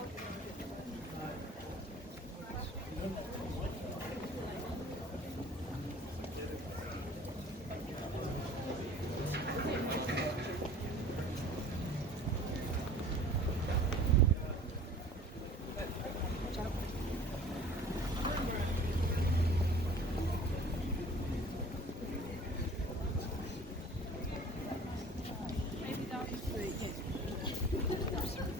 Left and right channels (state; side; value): normal; both; correlation 0.47